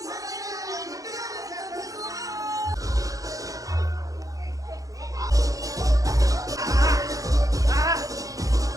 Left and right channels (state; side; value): late; left; 0.17 ms